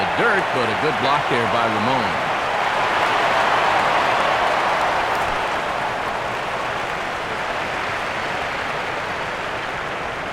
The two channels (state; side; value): noise; right; rumble, 22 dB below the sound